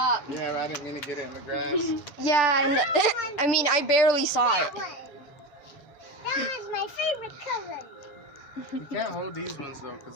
Yeah, I didn't mean to get it in the grass. Yeah, and I mean, I barely saw it. That was my favorite color. You can't hold these ones though,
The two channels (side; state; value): right; late; 6.8 ms